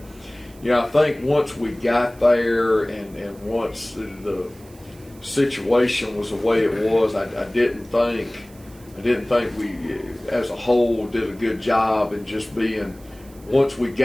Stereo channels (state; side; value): noise; right; hiss, 25 dB below the sound